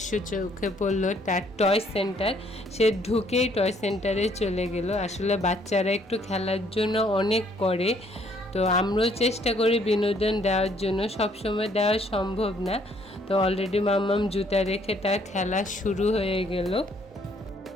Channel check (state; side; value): normal; both; correlation 0.65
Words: চোখে পড়লো, তার টয় সেন্টার। সে ঢুকেই টয় সেন্টারে চলে গেল। আসলে বাচ্চারা একটু খেলার জন্য অনেক করে, তো আমরাও চেষ্টা করি বিনোদন দেওয়ার জন্য, সবসময় দেওয়া সম্ভব না। তো অলরেডি মাম্মাম জুতা রেখে তার খেলা শুরু হয়ে গেল।